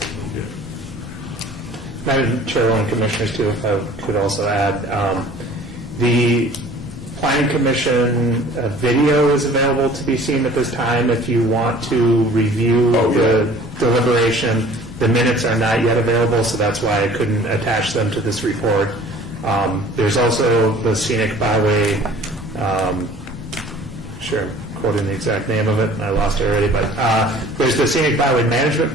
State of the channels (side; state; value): both; normal; correlation 0.49